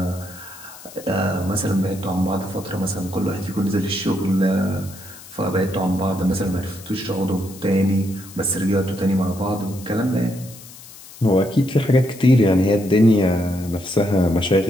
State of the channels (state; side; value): noise; left; hiss, 18 dB below the sound